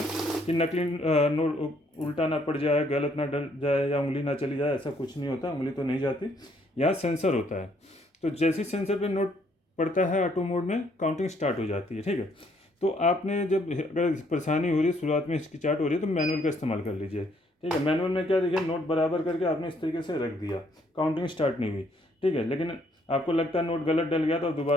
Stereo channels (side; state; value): both; normal; correlation 0.68